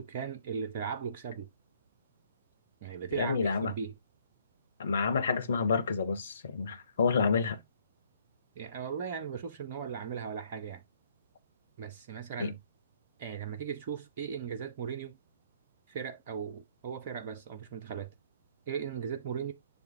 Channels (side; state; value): both; inverted; correlation -0.63